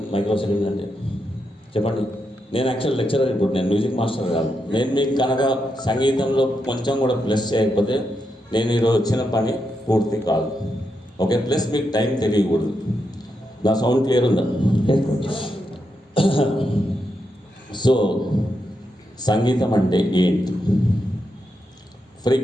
మైక్రో సెకండ్ అంటే? చెప్పండి. నేను యాక్చువల్ లెక్చరర్, ఇప్పుడు నేను మ్యూజిక్ మాస్టర్ కాదు. నేను మీకు కనుక సంగీతంలో కొంచెం కూడా ప్లస్ చేయకపోతే నేను ఈరోజు వచ్చిన పని పూర్తి కాదు. ఓకే, ప్లస్ మీకు టైం తెలియకూడదు. నా సౌండ్ క్లియర్ ఉందా? సో సంగీతం అంటే ఏంటి,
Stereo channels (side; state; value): both; normal; correlation 0.84